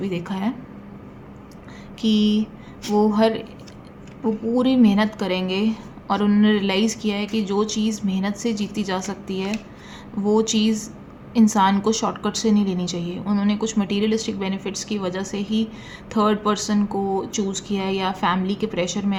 देखा है कि वो पूरी मेहनत करेंगे। और उन्होंने रियलाइज़ किया है कि जो चीज़ मेहनत से जीती जा सकती है, वो चीज़ इंसान को शॉर्टकट से नहीं लेनी चाहिए। उन्होंने कुछ मटीरियलिस्टिक बेनिफिट्स की वजह से ही थर्ड पर्सन को चूज़ किया है, या फैमिली के प्रेशर में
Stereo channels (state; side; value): identical; both; correlation 1.00